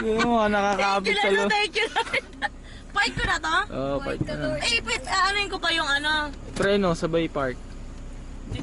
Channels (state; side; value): identical; both; correlation 1.00